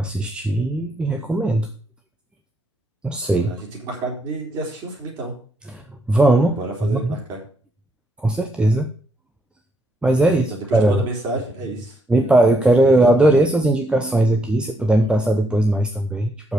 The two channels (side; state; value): both; normal; correlation 0.77